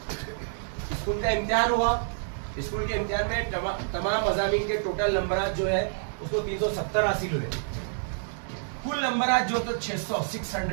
स्कूल का इम्तिहान हुआ, स्कूल के इम्तिहान में तमाम मज़ामीन के टोटल नंबरात जो है उसको 370 हासिल हुए, कुल नंबरात जो तो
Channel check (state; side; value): silent; left; digital silence